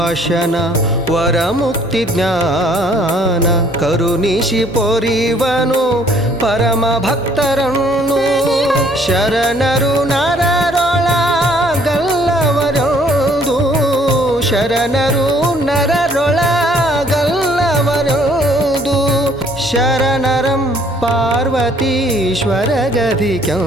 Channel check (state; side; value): noise; right; hum, 25 dB below the sound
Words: ವರಮುಕ್ತಿ ಜ್ಞಾನ ಕರುಣಿಸಿ ಪೊರಿವನು ಪರಮ ಭಕ್ತರನ್ನು ಶರಣರು ನರರೊಳಗಲ್ಲವರೊಂದು ಶರಣರು ನರರೊಳಗಲ್ಲವರೊಂದು ಶರಣರಂ ಪಾರ್ವತೀಶ್ವರ